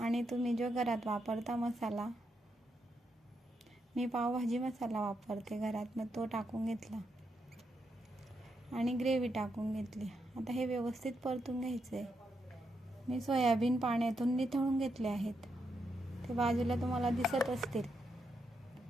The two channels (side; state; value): both; normal; correlation 0.82